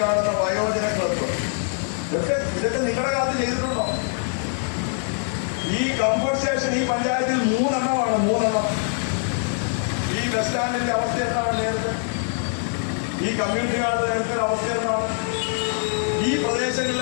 കാണുന്ന വയോജന ക്ലബ്ബ് ഇതൊക്കെ നിങ്ങളുടെ കാലത്ത് ചെയ്തിട്ടുണ്ടോ? ഈ കംഫോർട്ട് സ്റ്റേഷൻ ഈ പഞ്ചായത്തിൽ 3 എണ്ണമാണ്. 3 എണ്ണം. ഈ ബസ് സ്റ്റാൻഡിന്റെ അവസ്ഥ എന്താണ് നേരത്തെ? ഈ കമ്മ്യൂണിറ്റി ഹാളിന്റെ നേരത്തെ അവസ്ഥ എന്താണ്? ഈ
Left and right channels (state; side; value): silent; right; digital silence